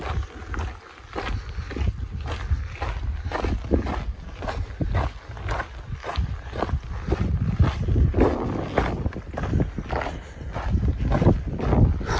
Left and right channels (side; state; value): both; identical; correlation 1.00